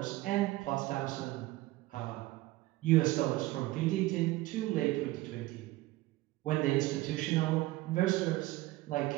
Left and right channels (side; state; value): left; quieter; 18.4 dB